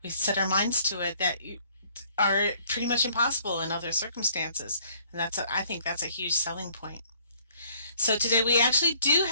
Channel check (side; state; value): both; inverted; correlation -0.61